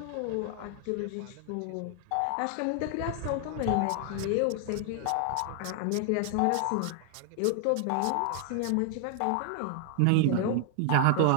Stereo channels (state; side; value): different; both; correlation 0.00